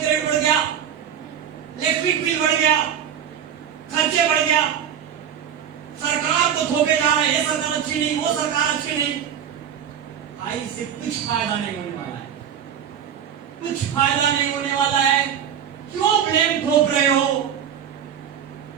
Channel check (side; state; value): left; quieter; 8.8 dB